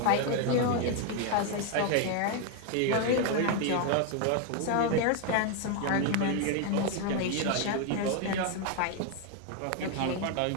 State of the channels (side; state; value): both; different; correlation 0.01